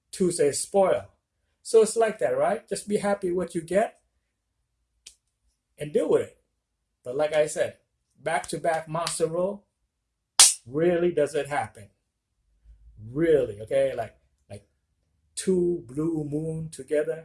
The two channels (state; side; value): identical; both; correlation 1.00